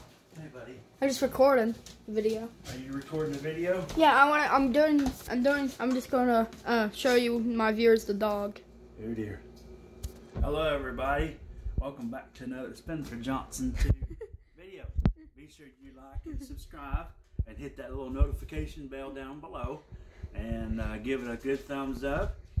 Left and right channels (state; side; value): identical; both; correlation 1.00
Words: Hey, buddy. I'm just recording the video. Are you recording the video? Yeah, I'm just gonna show you my viewers the dog. Oh dear. Hello, everybody. Welcome back to another Spencer Johnson 2 video. Be sure you like and subscribe and hit that little notification bell down below and give it a good thumbs up.